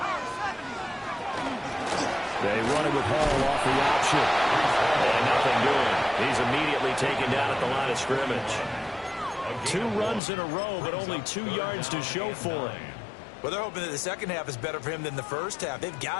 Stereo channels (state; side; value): drops out; right; at 10.2 s